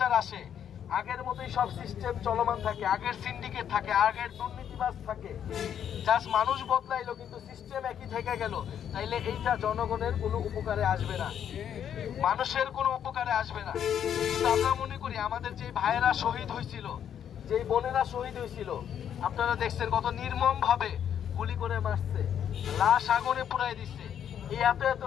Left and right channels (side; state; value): right; quieter; 9.1 dB